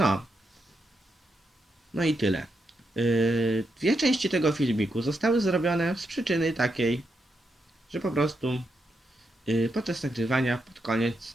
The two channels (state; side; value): normal; both; correlation 0.83